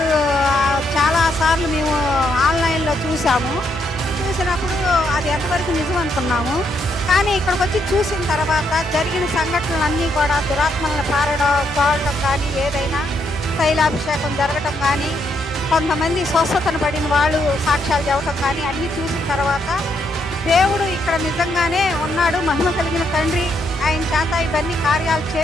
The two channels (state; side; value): normal; both; correlation 0.76